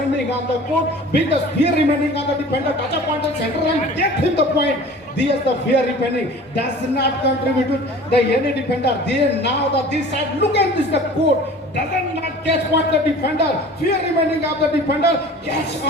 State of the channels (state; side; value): normal; both; correlation 0.43